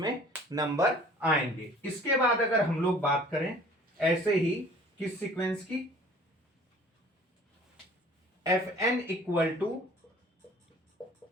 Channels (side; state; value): both; normal; correlation 0.49